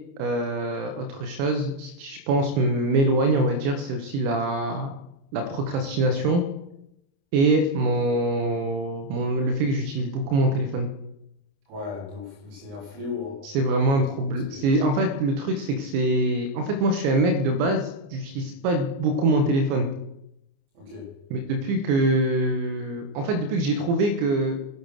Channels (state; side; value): late; left; 29 ms